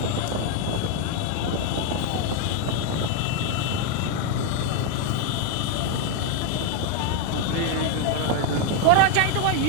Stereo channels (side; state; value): both; different; correlation 0.01